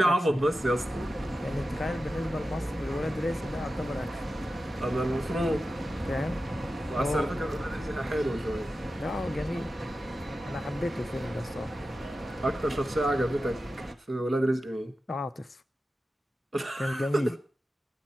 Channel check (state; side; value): normal; both; correlation 0.92